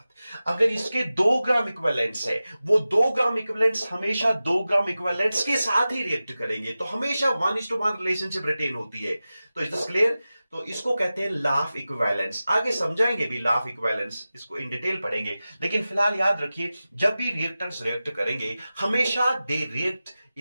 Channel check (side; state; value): both; inverted; correlation -0.95